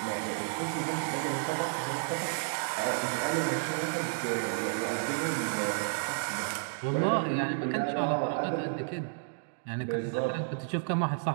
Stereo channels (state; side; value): silent; left; digital silence